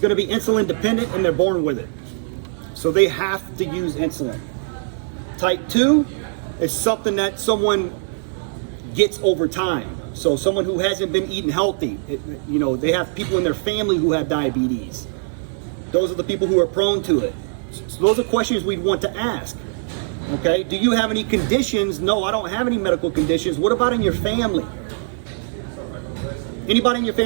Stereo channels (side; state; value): left; silent; digital silence